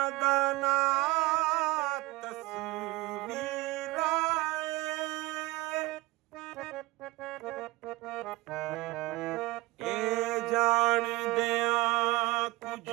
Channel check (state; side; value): quieter; left; 21.0 dB